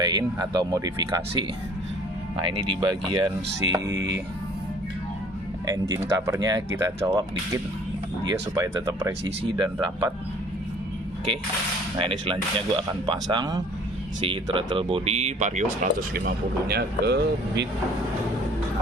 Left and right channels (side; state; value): both; normal; correlation 0.53